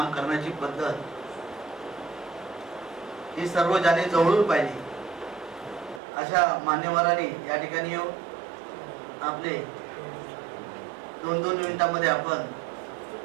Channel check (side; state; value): left; drops out; at 6.0 s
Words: करण्याची पद्धत ही सर्व ज्यांनी जवळून पाहिली अशा मान्यवरांनी या ठिकाणी येऊन आपले 2-2 मिनिटांमध्ये आपण